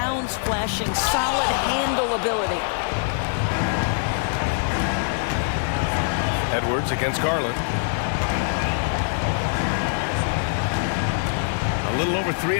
flashing solid handle ability. Edwards against Garland. A little over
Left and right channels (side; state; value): right; silent; 63 dB below the other